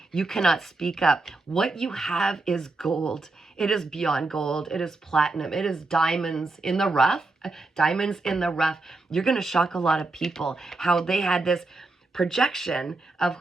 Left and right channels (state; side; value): quieter; left; 3.3 dB